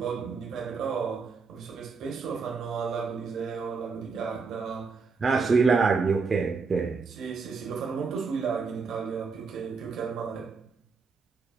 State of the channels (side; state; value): left; quieter; 4.9 dB